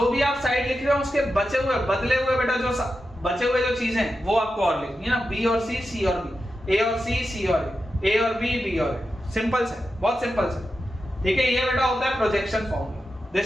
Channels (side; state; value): both; normal; correlation 0.90